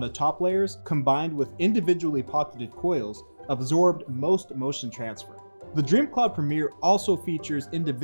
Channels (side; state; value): both; inverted; correlation -1.00